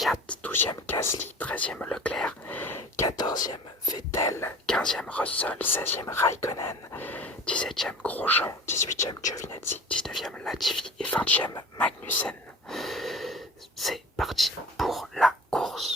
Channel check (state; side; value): normal; both; correlation 0.41